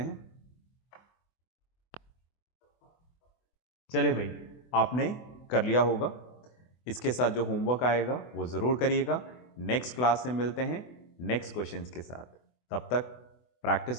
चले भाई, आपने कर लिया होगा। इसके साथ जो होमवर्क आएगा वो ज़रूर करिएगा। नेक्स्ट क्लास में मिलते हैं नेक्स्ट क्वेश्चंस के साथ। तब तक प्रैक्टिस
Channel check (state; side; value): late; right; 24 ms